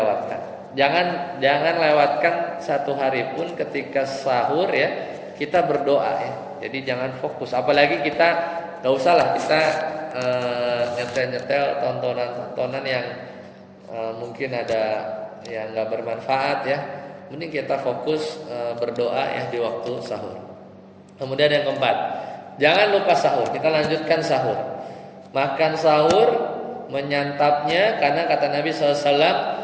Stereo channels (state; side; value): identical; both; correlation 1.00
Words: Jangan lewatkan 1 hari pun ketika sahur ya, kita berdoa ya. Jadi jangan fokus, apalagi kita nggak usah lah kita nyetel tontonan yang mungkin ada yang nggak bermanfaat ya. Mending kita fokus berdoa ya di waktu sahur. Kemudian yang keempat, jangan lupa sahur. Kita lanjutkan sahur. Makan sahur, menyantapnya, karena kata Nabi SAW,